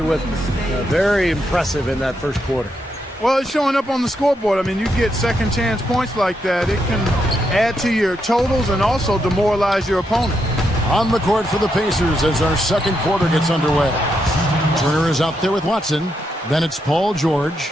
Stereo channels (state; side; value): normal; both; correlation 0.81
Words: very impressive in that first quarter. Well, it's showing up on the scoreboard. I mean, you get second chance points like that. It can add to your totals and also demoralize your opponent. On the court for the Pacers as our second quarter gets underway. Turner is out there with Watson. Then it's Paul George.